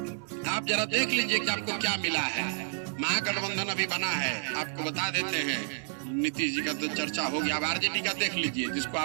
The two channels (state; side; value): silent; left; 58 dB below the other